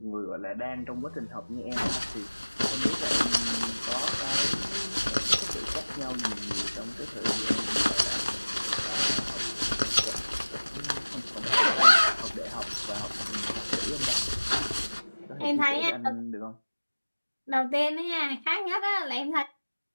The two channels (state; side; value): inverted; both; correlation -1.00